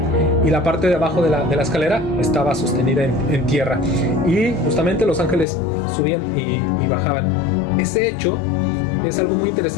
y la parte de abajo de la escalera estaba sostenida en tierra, y justamente los ángeles subían y bajaban. Ese hecho es algo muy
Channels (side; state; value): right; drops out; at 5.5 s